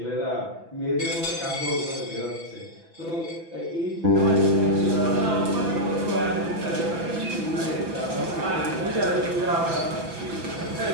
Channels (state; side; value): late; left; 6.0 ms